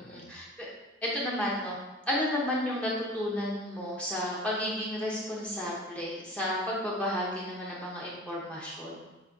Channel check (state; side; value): normal; both; correlation 0.40